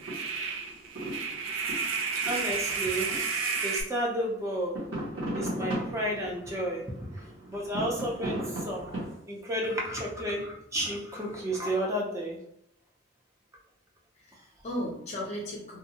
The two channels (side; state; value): both; normal; correlation 0.27